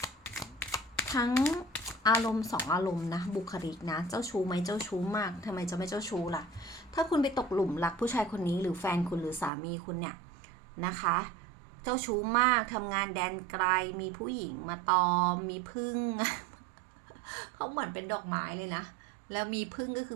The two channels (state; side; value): drops out; left; at 9.5 s